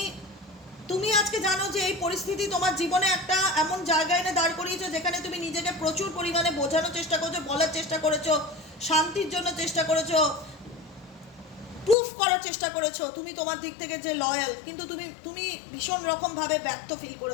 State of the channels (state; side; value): drops out; right; at 12.0 s